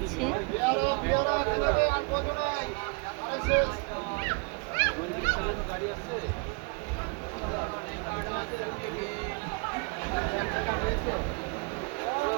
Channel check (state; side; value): quieter; left; 32.0 dB